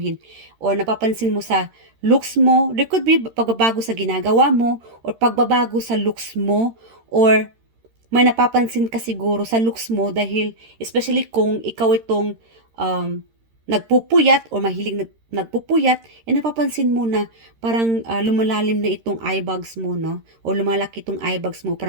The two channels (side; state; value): left; late; 13 ms